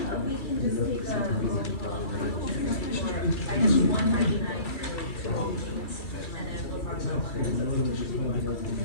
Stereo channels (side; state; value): right; late; 2.3 ms